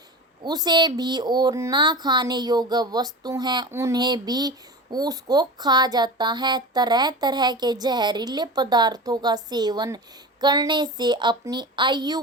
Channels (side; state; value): both; normal; correlation 0.30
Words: उसे भी, और ना खाने योग्य वस्तु हैं उन्हें भी उसको खा जाता है। तरह तरह के जहरीले पदार्थों का सेवन करने से अपनी आयु